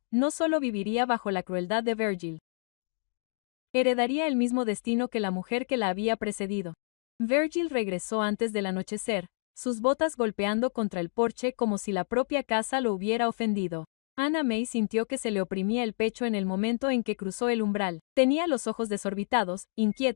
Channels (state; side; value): silent; right; digital silence